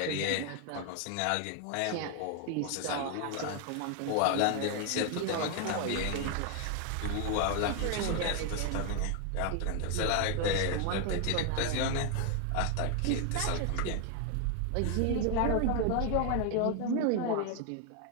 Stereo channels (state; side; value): different; both; correlation 0.00